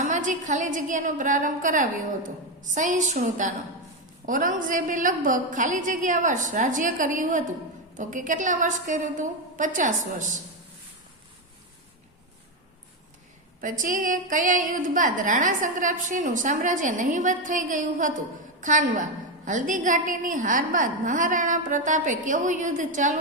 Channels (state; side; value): normal; both; correlation 0.09